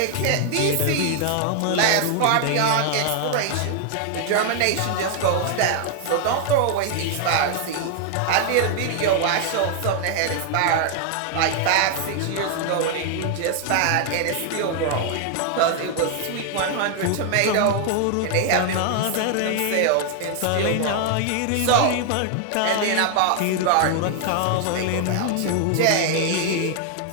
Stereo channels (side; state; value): both; different; correlation 0.00